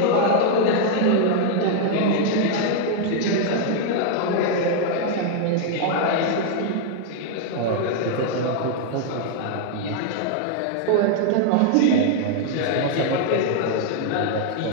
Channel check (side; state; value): both; different; correlation 0.00